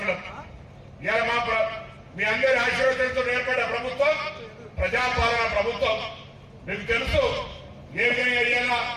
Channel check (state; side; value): identical; both; correlation 1.00